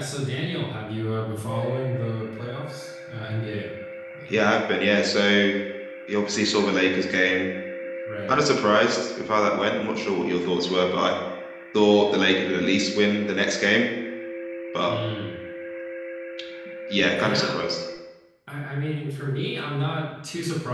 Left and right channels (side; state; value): both; identical; correlation 1.00